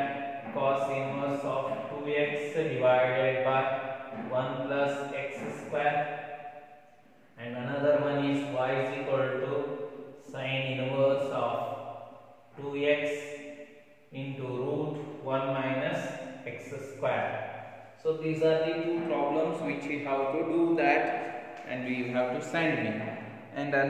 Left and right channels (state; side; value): identical; both; correlation 1.00